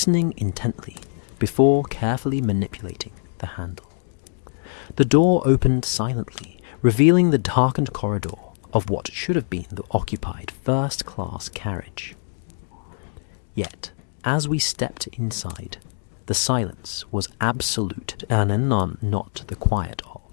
intently before carefully manipulating the handle. The door opened silently, revealing the darkened corridor of what should have been the occupied first-class carriage. Yet, as we stepped inside, the silence was absolute and none not the quiet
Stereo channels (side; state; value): right; silent; 63 dB below the other